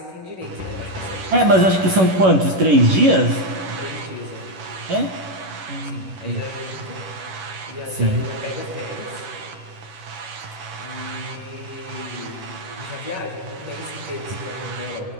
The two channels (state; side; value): late; left; 11 ms